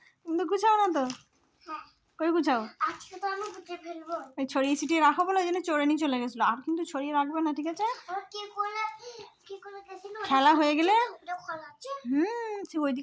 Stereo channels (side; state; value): both; identical; correlation 1.00